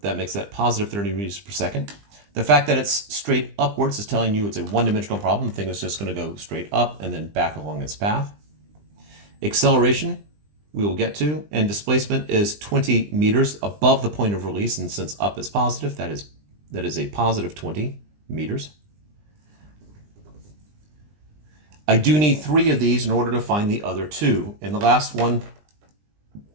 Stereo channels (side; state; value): left; late; 20 ms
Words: that makes that positive 30 meters per second. The fact that it's straight upwards is telling you it's a one-dimensional problem. The thing is just going to go straight up and then back along its path. Acceleration, we will get to, and displacement is 20 meters above the point of release, and since up is positive, that is a positive 20 meters. I do need 3 of these in order to find the other 2, and the last one